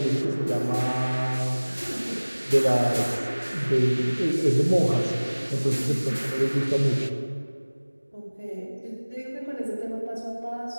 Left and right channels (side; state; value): both; inverted; correlation -1.00